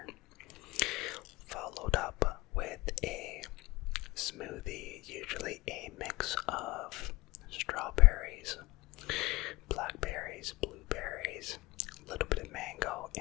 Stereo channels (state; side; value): quieter; right; 22.2 dB